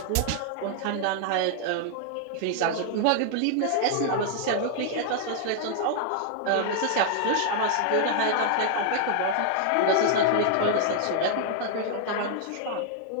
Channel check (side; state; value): both; different; correlation 0.00